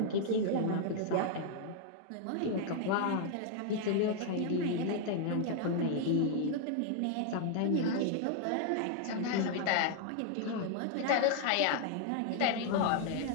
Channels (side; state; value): both; different; correlation 0.00